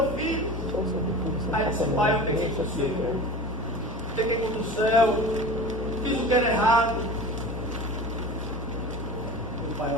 filho. Aí disse: Pai, eu peguei contigo, peguei contra o céu, fiz o que era errado. O Pai o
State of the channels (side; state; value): both; normal; correlation 0.34